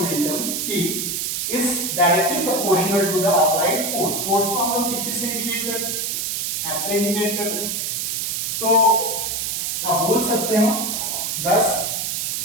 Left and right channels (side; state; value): right; noise; hiss, 1 dB below the sound